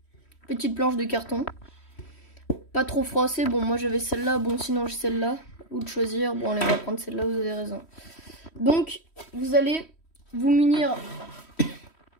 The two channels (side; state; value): right; late; 3.1 ms